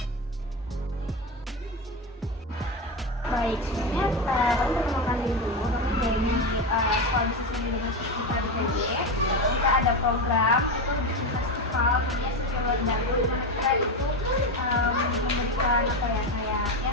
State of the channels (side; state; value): both; normal; correlation 0.16